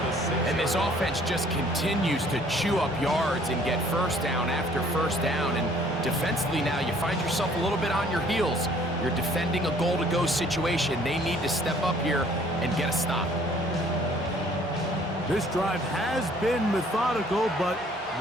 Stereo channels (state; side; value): normal; both; correlation 0.58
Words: And this offense just continues to chew up yards and get first down after first down. And defensively now, you find yourself a little bit on your heels. You're defending a goal-to-go situation. They need to step up here and get a stop. This drive has been methodical, but